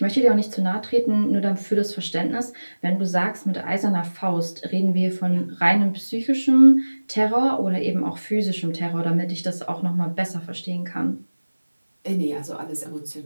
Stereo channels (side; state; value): both; inverted; correlation -1.00